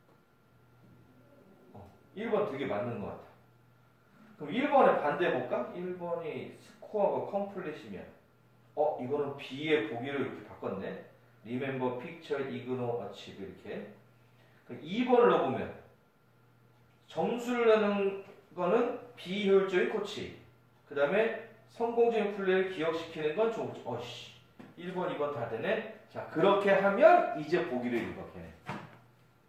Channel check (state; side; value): identical; both; correlation 1.00